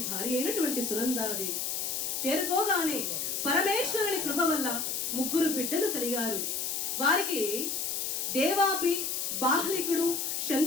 భార్య అయినటువంటి సునందాదేవి. చేరుకోగానే పరమేశ్వరుని కృప వల్ల 3 బిడ్డలు కలిగారు. వారికి దేవాపి, బాహ్లికుడు,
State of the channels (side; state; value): left; noise; hiss, 1 dB below the sound